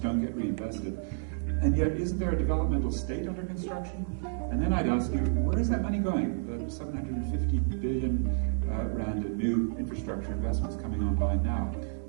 get reinvested. And yet, isn't there a developmental state under construction? And then I'd ask you, where is that money going? The 750 billion rand in new infrastructure investments coming online now.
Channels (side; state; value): left; silent; 58 dB below the other